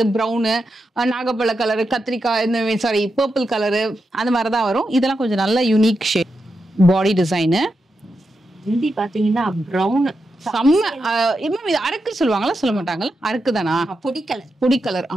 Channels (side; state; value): both; normal; correlation 0.87